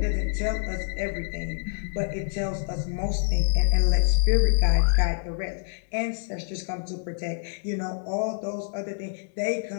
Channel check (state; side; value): silent; right; digital silence